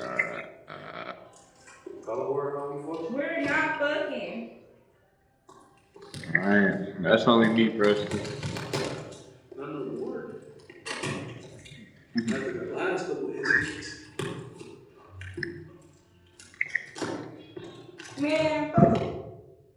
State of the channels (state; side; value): identical; both; correlation 1.00